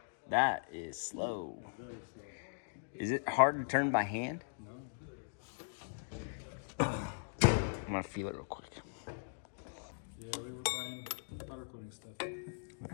That is slow. Very slow. Is it hard to turn by hand? No. I'm gonna feel it real quick. Yeah, we were buying powder coating stuff.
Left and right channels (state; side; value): silent; right; digital silence